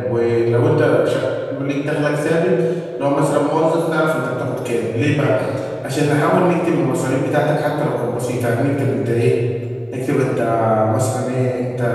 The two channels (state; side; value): identical; both; correlation 1.00